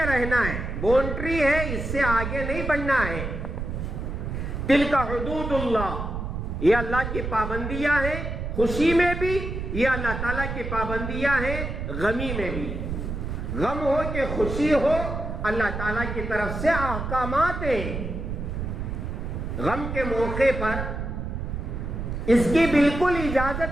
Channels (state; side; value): noise; right; rumble, 4 dB below the sound